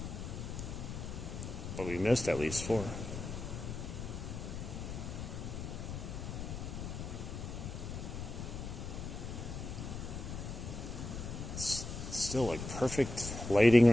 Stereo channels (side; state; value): left; noise; rumble, 6 dB below the sound